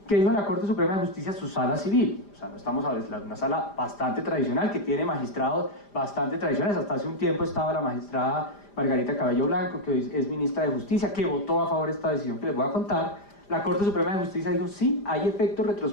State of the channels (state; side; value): late; right; 5.0 ms